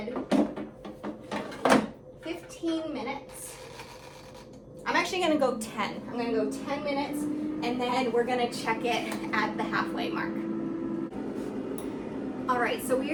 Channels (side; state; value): both; identical; correlation 1.00